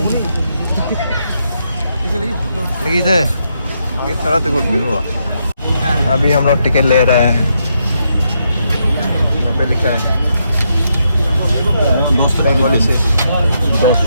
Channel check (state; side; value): inverted; both; correlation -0.79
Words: लगी थे इस तरह से कुछ नहीं हुआ अभी हम लोग टिकट ले रहे हैं यहाँ पे लिखा है बंगाली से